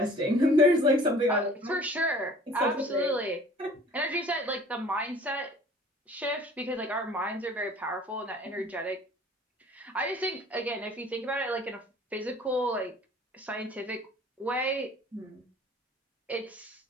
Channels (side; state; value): both; normal; correlation 0.50